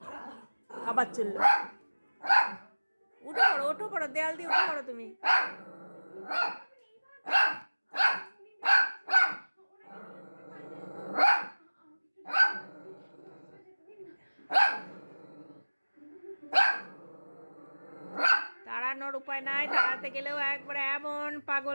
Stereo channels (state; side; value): inverted; both; correlation -1.00